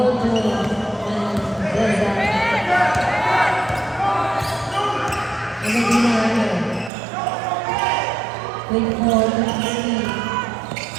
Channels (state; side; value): drops out; left; at 6.9 s